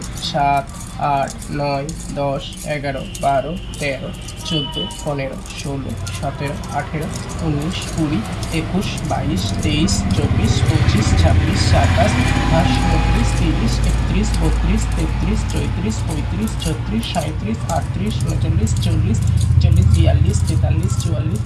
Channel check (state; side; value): identical; both; correlation 1.00